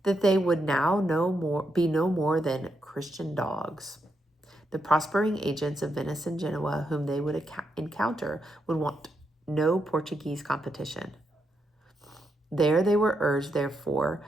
that they would now be no more than Christian dogs. The prospering agents of Venice and Genoa whom they would encounter would want no Portuguese competition. There they were urged, therefore,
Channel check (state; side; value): normal; both; correlation 0.81